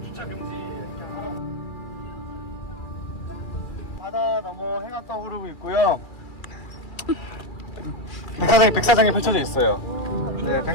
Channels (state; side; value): late; right; 2.3 ms